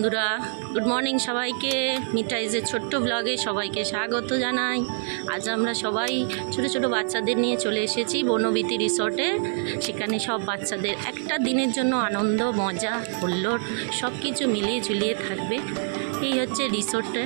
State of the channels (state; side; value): silent; left; 61 dB below the other